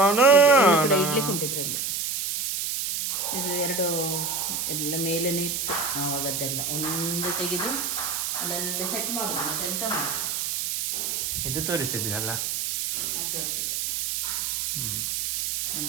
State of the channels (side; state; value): right; noise; hiss, 1 dB below the sound